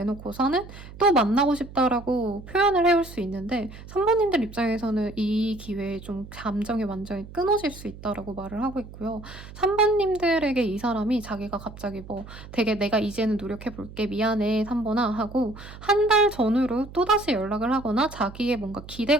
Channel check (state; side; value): noise; right; hum, 16 dB below the sound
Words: 또 만나고 싶다라고 표현을 해올 수 있는데 3번님들 입장에서는 이 기회에 좀 감정이 완전히 끊어질 수 있다라고 말을 하고 있고요. 3번님들에게 이 사람이 자기가 갑자기 뭐 되게 내가 이제는 노력해볼게 미안해 3번아 하고 한 달 전후로 또다시 연락을 하거나 자기의 뭔가